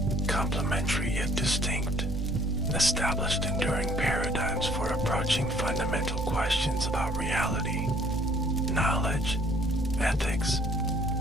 complementary yet distinct, established enduring paradigms for approaching fundamental questions about reality, knowledge, ethics,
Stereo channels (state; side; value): normal; both; correlation 0.59